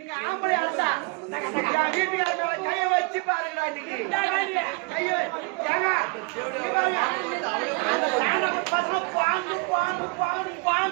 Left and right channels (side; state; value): left; quieter; 29.6 dB